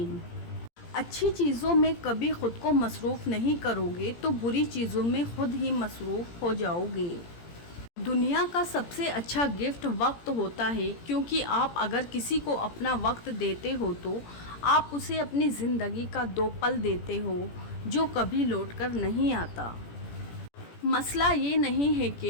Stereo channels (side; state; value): right; late; 17 ms